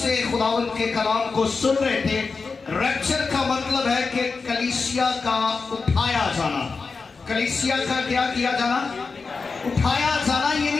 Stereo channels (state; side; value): quieter; right; 4.5 dB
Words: खुदावंद के कलाम को सुन रहे थे। रैप्चर का मतलब है कि कलीसिया का उठाया जाना। कलीसिया का क्या किया जाना? उठाया जाना,